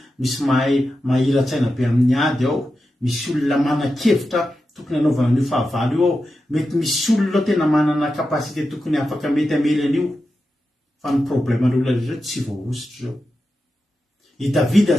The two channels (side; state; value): both; normal; correlation 0.90